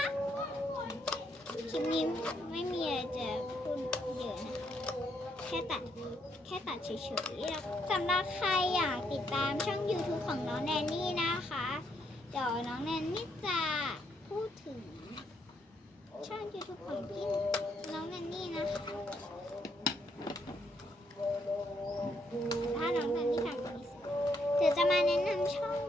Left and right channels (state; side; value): normal; both; correlation 0.74